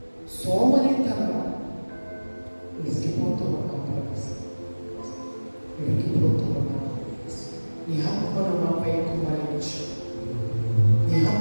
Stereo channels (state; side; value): inverted; both; correlation -1.00